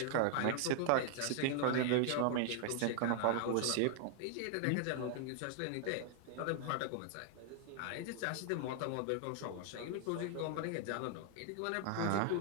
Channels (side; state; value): both; different; correlation 0.00